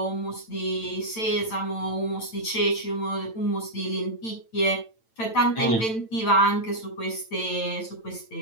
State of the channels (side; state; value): right; late; 9.0 ms